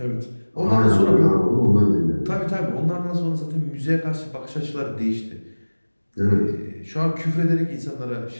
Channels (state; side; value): inverted; both; correlation -1.00